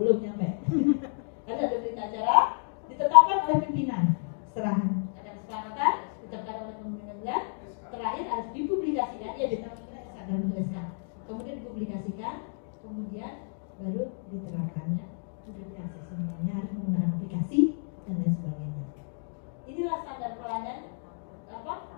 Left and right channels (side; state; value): right; silent; digital silence